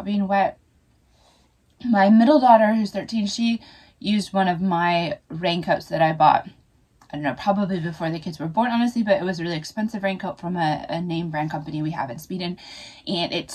being wet. My middle daughter, who's 13, she used one of my raincoats that I bought, I don't know, probably before the kids were born, honestly, but it was a really expensive raincoat from a name brand company we have in Sweden, and it's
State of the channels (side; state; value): both; identical; correlation 1.00